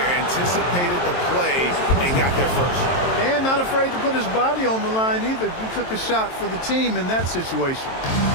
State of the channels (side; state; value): right; late; 23 ms